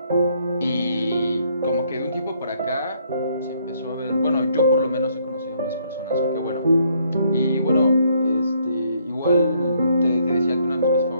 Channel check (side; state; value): both; inverted; correlation -0.69